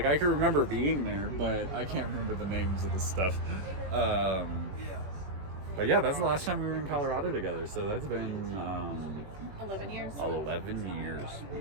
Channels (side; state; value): left; late; 21 ms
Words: I can remember being there, but I can't remember the names of the stuff. But yeah, that's the last time we were in Colorado together. So that's been 11 years. 11 years.